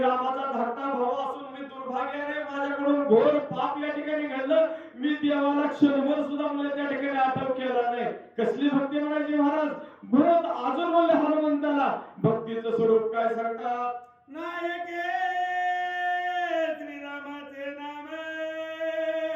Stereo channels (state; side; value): identical; both; correlation 1.00